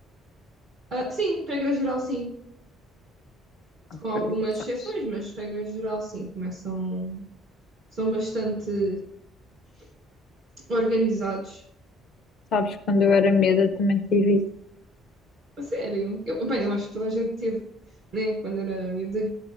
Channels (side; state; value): both; normal; correlation 0.53